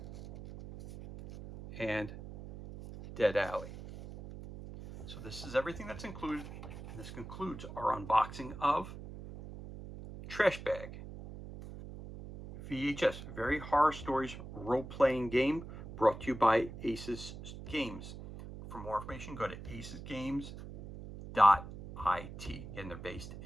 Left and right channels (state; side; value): noise; right; hum, 12 dB below the sound